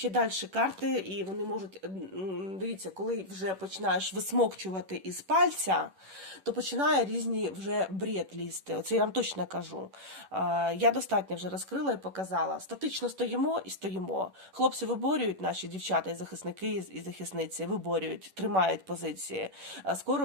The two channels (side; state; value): left; late; 11 ms